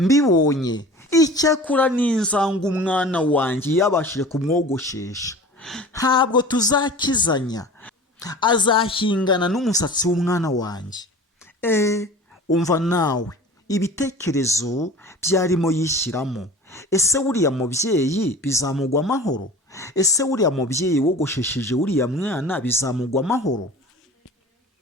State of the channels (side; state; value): both; normal; correlation 0.40